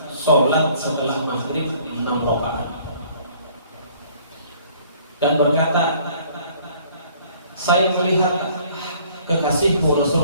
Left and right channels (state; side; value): inverted; both; correlation -0.57